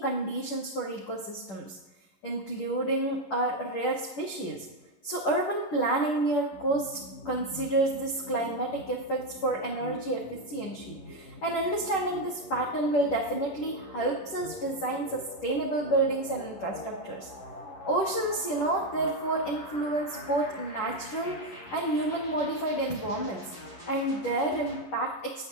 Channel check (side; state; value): right; late; 10 ms